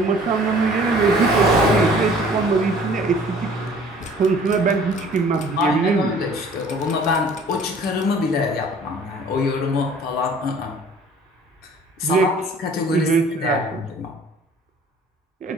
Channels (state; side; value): normal; both; correlation 0.52